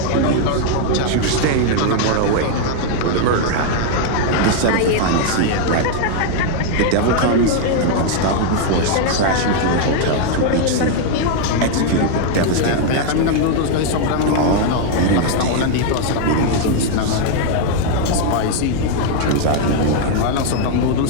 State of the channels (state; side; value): different; both; correlation 0.00